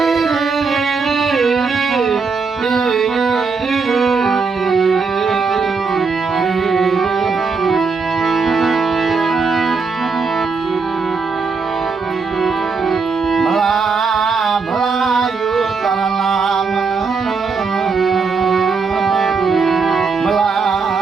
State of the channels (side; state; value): left; quieter; 4.8 dB